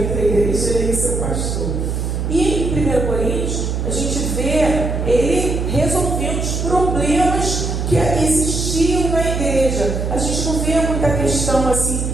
a igreja e seu pastor. E em 1 Coríntios, a gente vê ele resolvendo os problemas que existiam na igreja. A gente não vê muita questão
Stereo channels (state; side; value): noise; right; hum, 1 dB below the sound